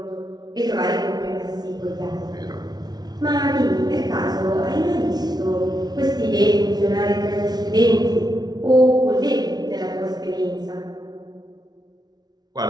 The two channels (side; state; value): left; late; 0.19 ms